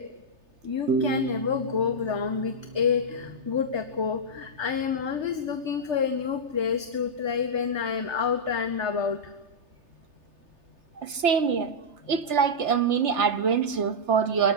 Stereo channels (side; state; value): left; late; 3.3 ms